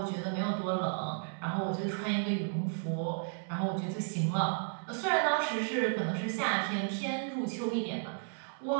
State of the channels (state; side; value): silent; left; digital silence